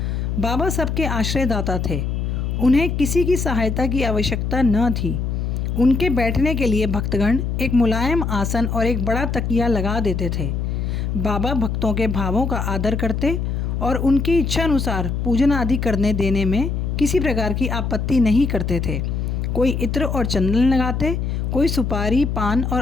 बाबा सबके आश्रयदाता थे, उन्हें किसी की सहायता की आवश्यकता न थी। उनके बैठने के लिए भक्तगण एक मुलायम आसन और एक बड़ा तकिया लगा देते थे। बाबा भक्तों के भावों का आदर करते और उनकी इच्छानुसार पूजन आदि करने देने में किसी प्रकार की आपत्ति नहीं करते थे। कोई इत्र और चंदन लगाते, कोई सुपारी, पान और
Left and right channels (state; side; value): noise; left; hum, 1 dB below the sound